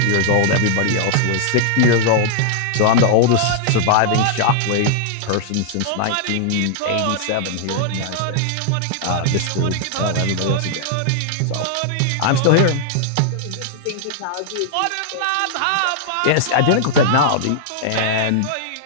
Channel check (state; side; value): different; both; correlation -0.01